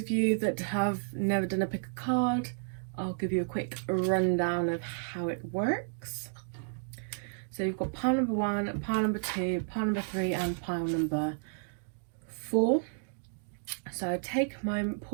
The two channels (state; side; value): silent; left; digital silence